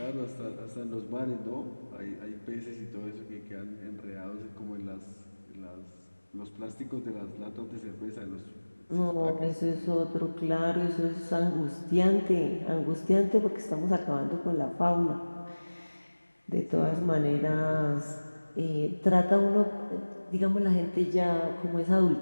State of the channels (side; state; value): both; inverted; correlation -1.00